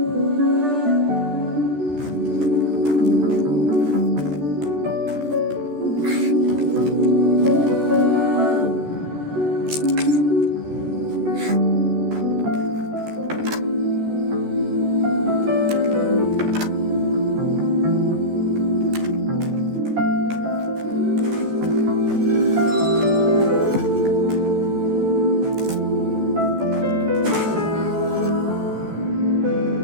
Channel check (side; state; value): left; late; 14 ms